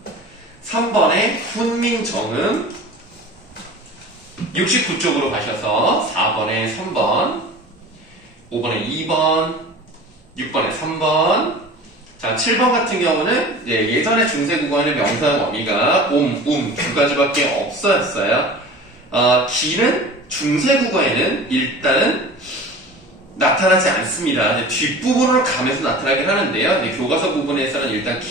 3번에 훈민정음, 69쪽으로 가셔서 4번에 3번, 5번에 2번, 6번에 3번. 자, 7번 같은 경우는 예전에 중세국어에는 명사 범위가 두 가지밖에 없었어요. 기는 중세국어에는 일단은 나타나지 않습니다. 뒷부분으로 가면서 나타나긴 하는데요. 교과서 부분에서는 일단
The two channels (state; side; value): normal; both; correlation 0.39